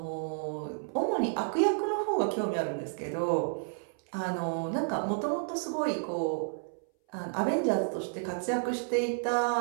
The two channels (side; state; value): left; silent; 57 dB below the other